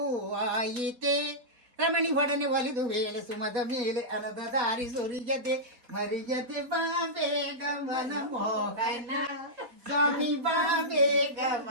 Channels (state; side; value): late; left; 4.1 ms